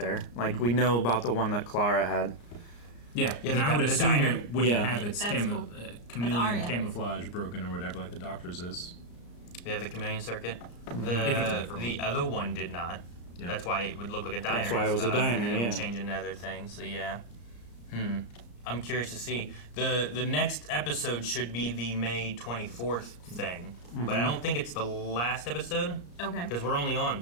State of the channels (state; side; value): late; right; 34 ms